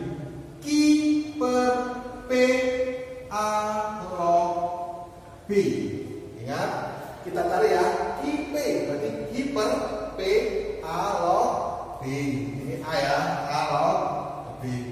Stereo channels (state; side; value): identical; both; correlation 1.00